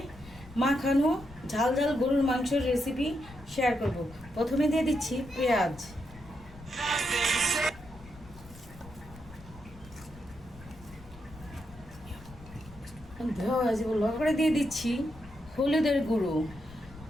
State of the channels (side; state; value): left; noise; rumble, 18 dB below the sound